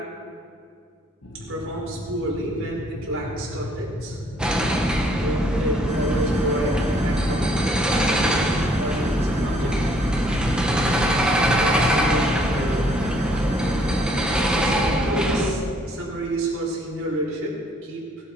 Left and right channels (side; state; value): both; normal; correlation 0.63